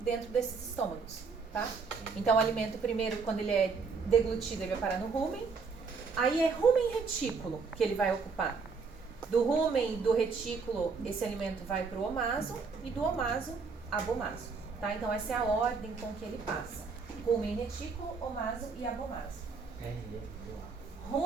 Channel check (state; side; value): quieter; left; 4.9 dB